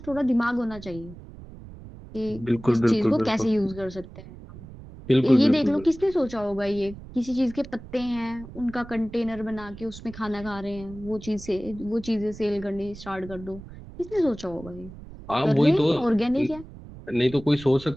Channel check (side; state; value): right; noise; rumble, 16 dB below the sound